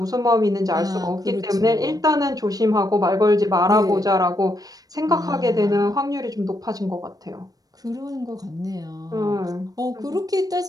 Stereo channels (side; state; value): left; late; 0.18 ms